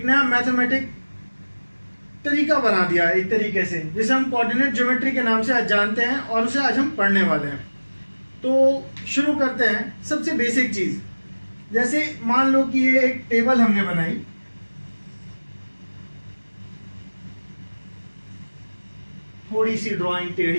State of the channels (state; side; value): inverted; both; correlation -1.00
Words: नया मैथमेटिक तरीका बना दिया एक तरीके से, जिसे हम कोऑर्डिनेट ज्योमेट्री के नाम से आज जानते हैं और उसे आज हम पढ़ने वाले हैं। तो शुरू करते हैं सबसे बेसिक चीज़। जैसे मान लो कि ये एक टेबल हमने बनाई, थोड़ी सी ड्राइंग